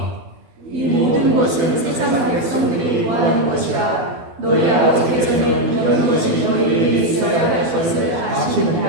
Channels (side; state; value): left; late; 12 ms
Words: 이 모든 것은 세상 백성들이 구하는 것이라. 너희 아버지께서는 이런 것이 너희에게 있어야 할 것을